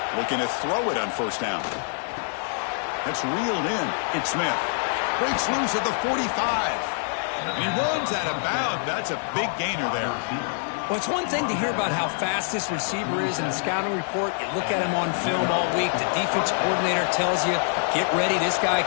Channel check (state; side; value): silent; right; 62 dB below the other